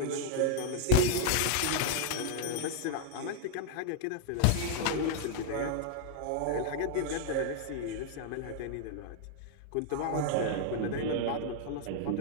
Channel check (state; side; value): different; both; correlation -0.01